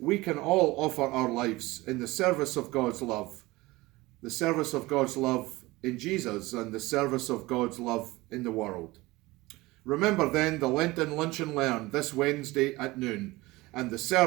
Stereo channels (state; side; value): quieter; left; 20.6 dB